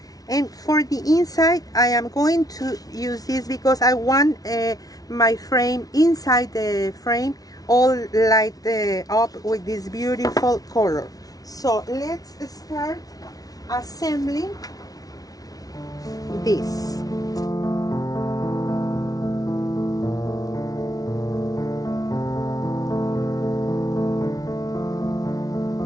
and for the inside I am going to use this because I want my frame, inside the frame, all light up with this beautiful color. So let's start assembling this.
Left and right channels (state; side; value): late; right; 0.18 ms